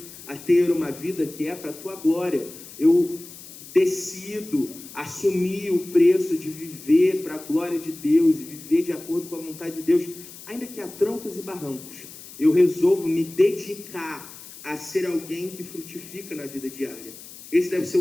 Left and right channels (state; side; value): noise; left; hiss, 16 dB below the sound